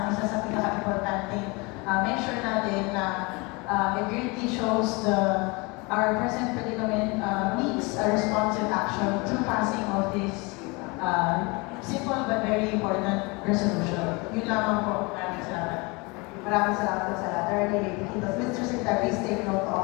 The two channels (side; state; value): right; quieter; 27.3 dB